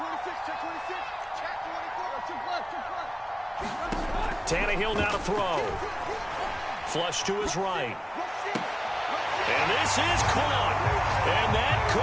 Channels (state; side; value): identical; both; correlation 1.00